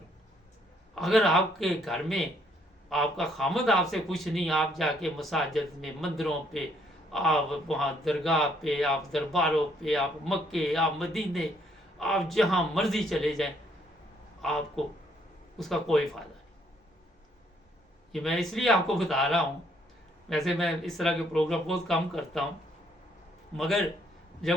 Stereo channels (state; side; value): normal; both; correlation 0.68